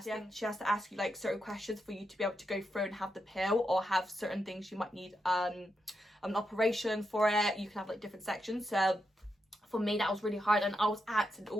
thing? She has to ask you like certain questions for you to be able to go through and have the pill, or have certain things you might need an operation for it. You can have like different sections. So for me that was really hard, and I was asking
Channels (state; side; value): normal; both; correlation 0.84